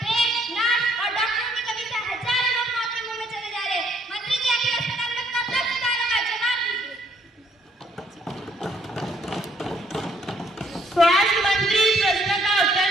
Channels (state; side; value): normal; both; correlation 0.66